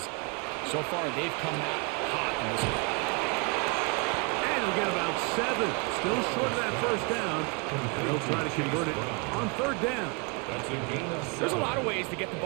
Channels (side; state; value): left; quieter; 32.3 dB